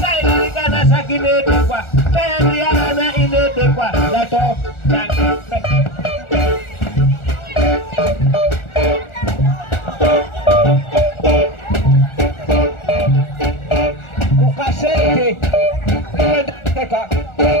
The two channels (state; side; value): late; right; 1.4 ms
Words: sai kanasa kinedi kwa tayari ana inede kwa lato